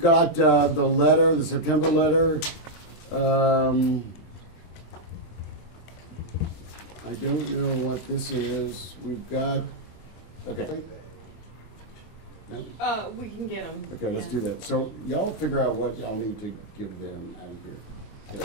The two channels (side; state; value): right; late; 24 ms